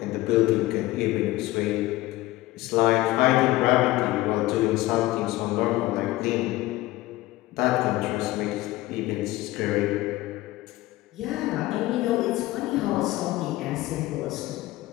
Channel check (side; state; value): right; quieter; 17.8 dB